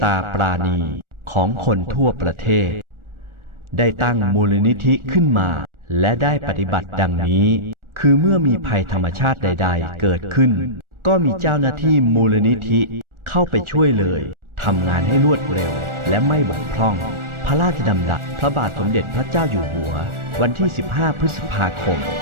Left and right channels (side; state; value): left; late; 1.4 ms